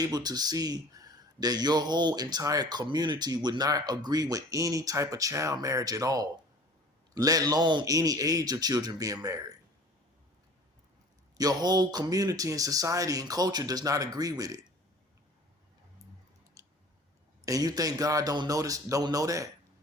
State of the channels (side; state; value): both; normal; correlation 0.45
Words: to see that your whole entire community would not agree with any type of child marriage at all, let alone any age of children being married? Your whole community and society and culture does not agree with it. And you think God don't know